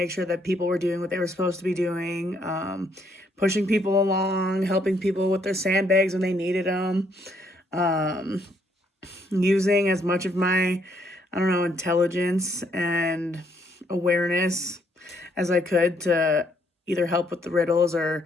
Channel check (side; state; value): both; normal; correlation 0.70